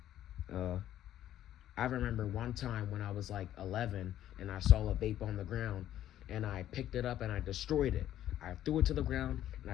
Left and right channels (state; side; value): quieter; right; 12.1 dB